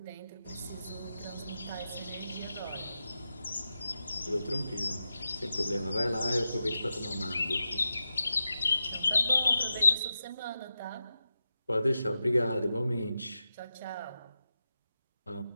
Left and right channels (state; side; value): inverted; both; correlation -0.91